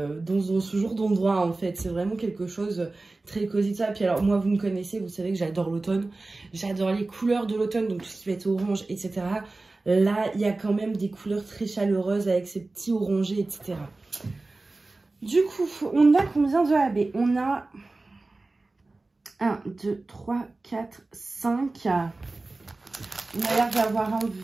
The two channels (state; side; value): quieter; left; 3.2 dB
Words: ce genre d'endroit en fait. C'est vraiment quelque chose très cosy de ça. Puis alors moi vous me connaissez, vous savez que j'adore l'automne. J'adore les couleurs de l'automne, donc tout ce qui va être orange, etc. Là, il y a quand même des couleurs très chaleureuses avec ces petits orangés, etc. Du coup, on a combien de AB? On a 1, 2, 3, 4, 5. On a l'air d'avoir un